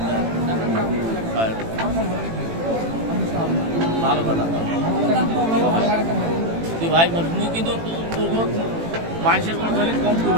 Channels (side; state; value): left; late; 18 ms